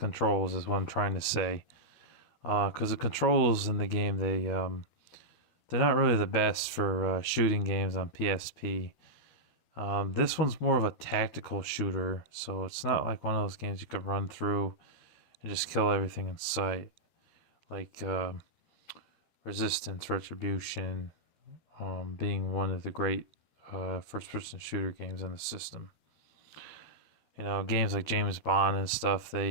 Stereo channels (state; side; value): late; right; 13 ms